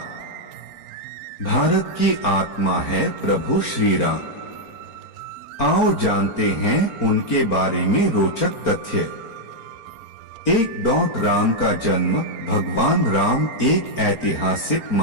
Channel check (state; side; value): late; right; 4.4 ms